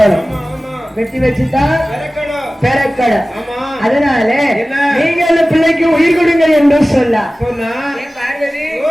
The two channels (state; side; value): normal; both; correlation 0.97